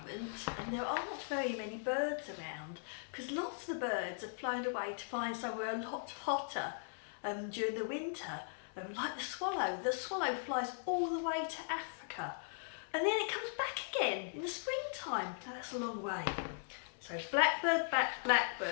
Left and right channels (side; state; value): right; silent; 52 dB below the other